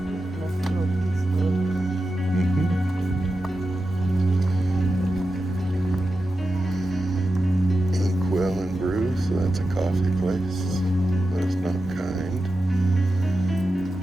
Inkwell Brew, so that's a coffee place, but it's not kind.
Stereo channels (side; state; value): both; normal; correlation 0.91